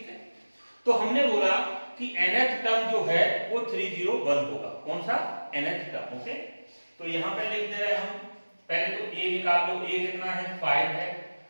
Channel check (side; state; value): both; inverted; correlation -1.00